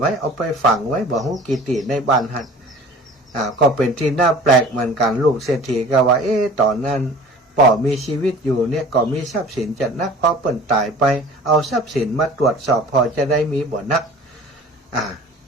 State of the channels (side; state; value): both; normal; correlation 0.45